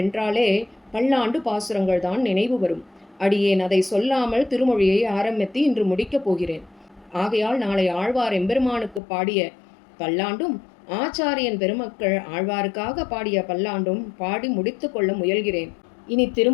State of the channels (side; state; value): right; drops out; at 9.0 s